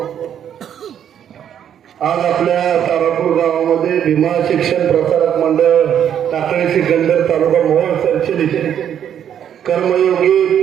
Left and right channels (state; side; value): quieter; left; 9.4 dB